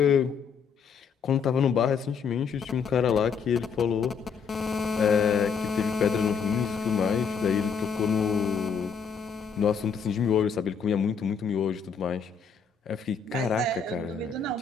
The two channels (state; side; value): quieter; right; 6.1 dB